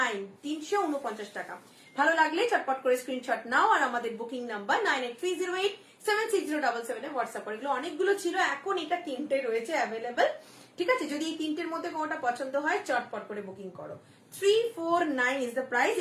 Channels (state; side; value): identical; both; correlation 1.00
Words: 349 টাকা। ভালো লাগলে চটপট করে স্ক্রিনশট নাও আর আমাদের বুকিং নাম্বার 9830876077 এ হোয়াটসঅ্যাপ করে। এগুলো অনেকগুলো ছিল, এখন এটা 3টে রয়েছে অ্যাভেলেবেল, ঠিক আছে। যদি এই 3টের মধ্যে কোনোটা পছন্দ হয় চটপট করে বুকিং করো। 349 ইজ দ্য প্রাইস।